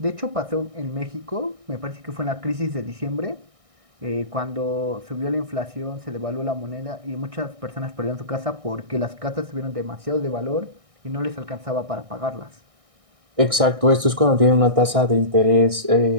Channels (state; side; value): late; left; 1.6 ms